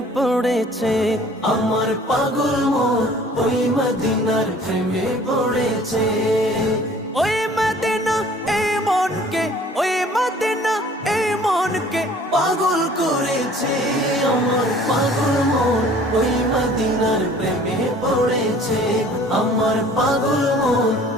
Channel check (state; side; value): normal; both; correlation 0.52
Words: পড়েছে। আমার পাগল মন ওই মদিনার প্রেমে পড়েছে। ওই মদিনা এই মনকে, ওই মদিনা এই মনকে পাগল করেছে। আমার পাগল মন ওই মদিনার প্রেমে পড়েছে। আমার পাগল মন